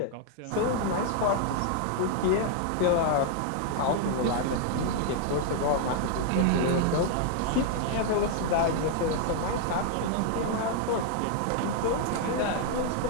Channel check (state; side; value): different; both; correlation 0.00